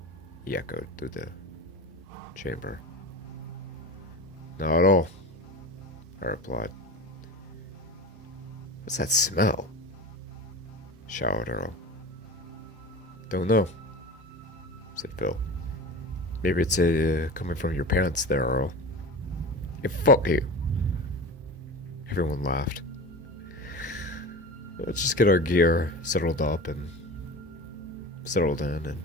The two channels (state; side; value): normal; both; correlation 0.31